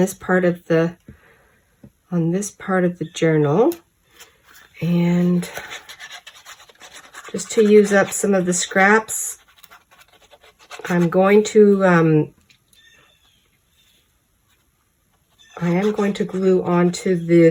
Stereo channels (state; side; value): identical; both; correlation 1.00